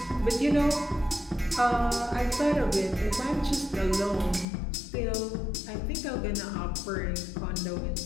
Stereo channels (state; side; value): drops out; right; at 4.5 s